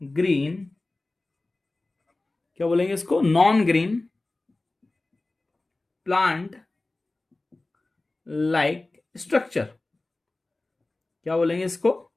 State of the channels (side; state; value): right; quieter; 3.0 dB